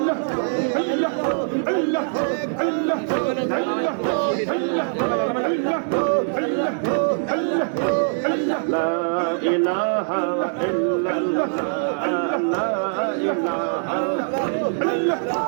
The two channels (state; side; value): silent; left; digital silence